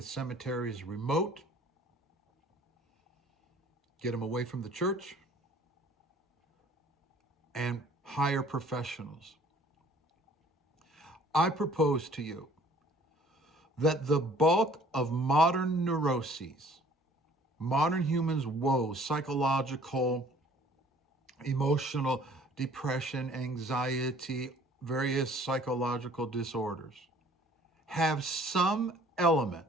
cemeteries remote. Get them away from the church. And hire professionals. I propose to you that the bulk of modern neuroses, modern humans' woes, psychological, emotional, depression, anxiety, various psychological disorders, have some element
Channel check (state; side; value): normal; both; correlation 0.54